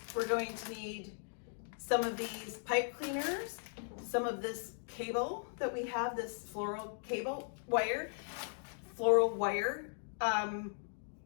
We're going to need some of these pipe cleaners, some of this cable that we have, this floral wire.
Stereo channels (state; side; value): silent; right; digital silence